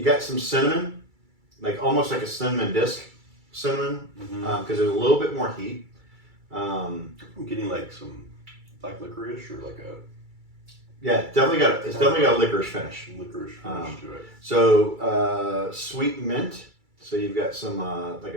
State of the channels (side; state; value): left; late; 2.3 ms